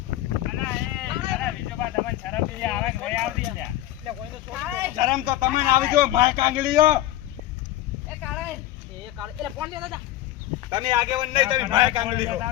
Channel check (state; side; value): quieter; right; 14.3 dB